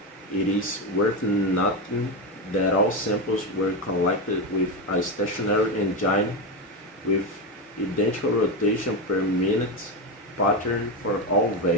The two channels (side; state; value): both; normal; correlation 0.13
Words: It is worth noting that all samples were collected with a stationary engine with identical rotation per minute pattern for all